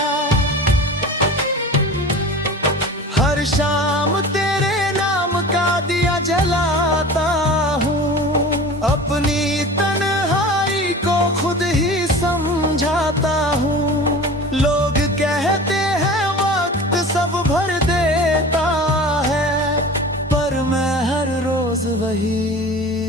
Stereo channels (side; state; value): both; normal; correlation 0.37